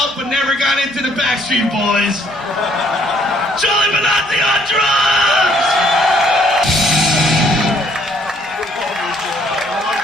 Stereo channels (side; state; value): both; normal; correlation 0.64